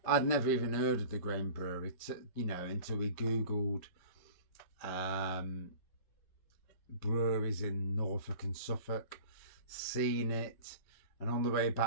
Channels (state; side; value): late; right; 5.2 ms